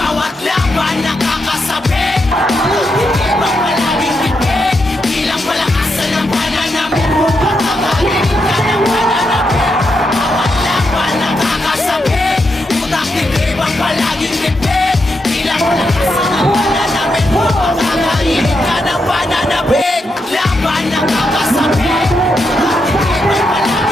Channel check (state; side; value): normal; both; correlation 0.83